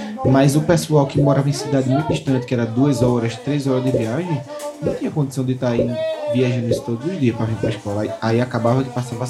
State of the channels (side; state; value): both; identical; correlation 1.00